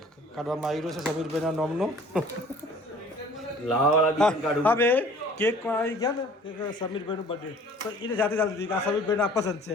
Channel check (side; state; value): both; normal; correlation 0.50